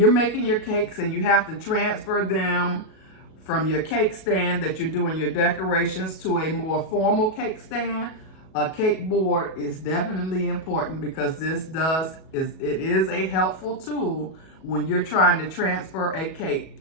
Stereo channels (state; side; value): late; right; 37 ms